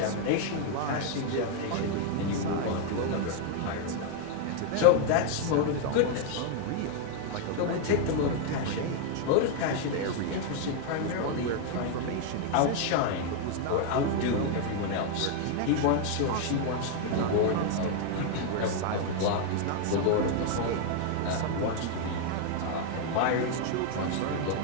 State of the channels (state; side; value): different; both; correlation 0.00